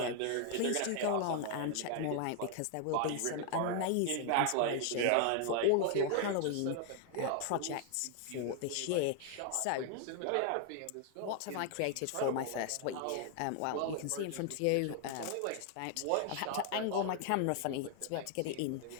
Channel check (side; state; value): both; different; correlation 0.00